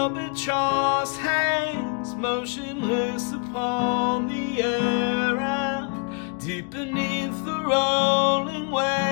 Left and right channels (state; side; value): quieter; right; 34.0 dB